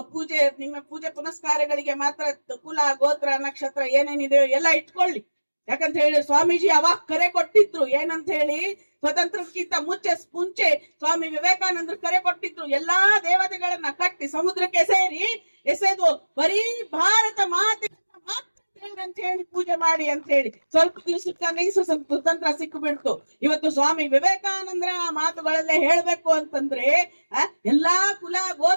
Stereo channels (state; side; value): inverted; both; correlation -1.00